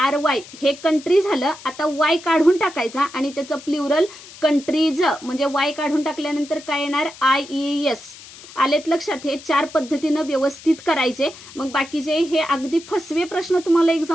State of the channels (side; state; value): left; noise; hiss, 18 dB below the sound